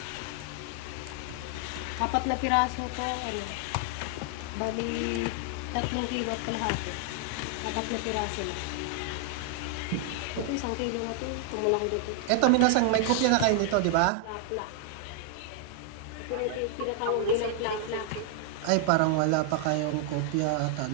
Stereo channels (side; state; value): both; different; correlation 0.00